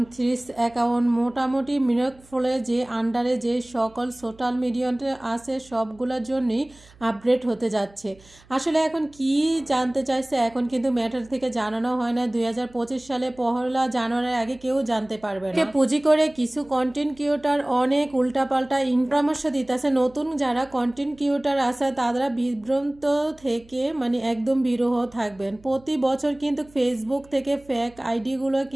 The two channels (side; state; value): right; noise; hum, 26 dB below the sound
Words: থ্রিস অ্যাকাউন্ট, মোটামুটি মিরকফলে যে আন্ডারে যে সকল সোশ্যাল মিডিয়াতে আছে সবগুলোর জন্যই আপডেট হতে যাচ্ছে। আসলে এখন কি জানতে চাইছে, এখন কিন্তু ম্যাটার থেকে জানানো হয় না। 2025 সালে 1 জানুয়ারির আগে কেউ জানতে পারবে না। পুঁজি করে কিছু কন্টেন্ট ক্রিয়েটর অনেক উল্টাপাল্টা পরামর্শ দিতেছে। নতুন যারা কন্টেন্ট ক্রিয়েটর আছে তারা বিভ্রান্ত থেকে মানে একদম বিরহ থাকবেন। প্রতি বছর কিন্তু ফেসবুক থেকে ফেক আইডিগুলো